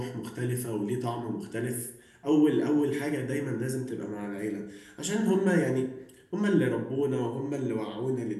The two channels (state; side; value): identical; both; correlation 1.00